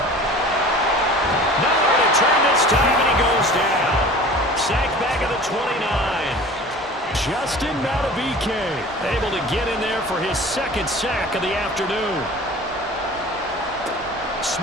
Nowhere to turn this time, and he goes down. Sacked back at the 29. Justin Madubuike able to get in there for his second sack of the afternoon.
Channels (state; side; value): normal; both; correlation 0.42